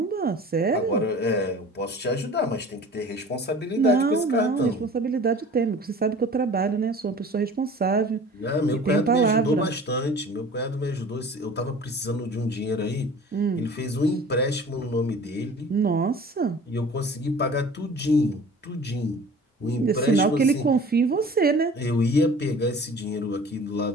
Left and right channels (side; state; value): both; normal; correlation 0.43